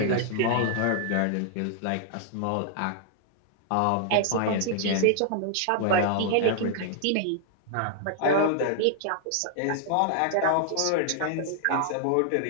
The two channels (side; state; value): both; different; correlation -0.01